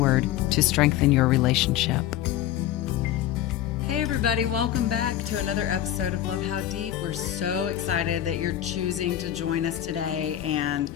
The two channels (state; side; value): quieter; right; 12.2 dB